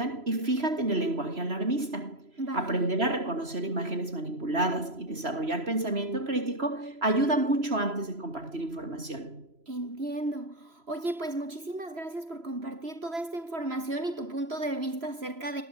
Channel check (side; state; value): left; late; 3.0 ms